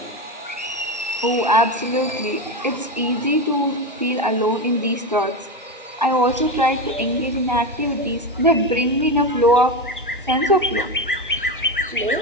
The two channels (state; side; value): normal; both; correlation 0.17